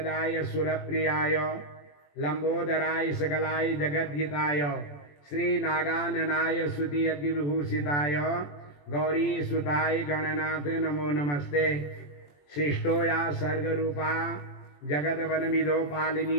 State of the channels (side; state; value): right; late; 21 ms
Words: सुरप्रियाय लंबोदराय सकलाय जगद्धिताय श्री नागाननाय स्तुति अग्निविभूषिताय गौरी सुताय गणनाथ नमो नमस्ते। सृष्टो या सर्गरूपा जगद्वनमिदो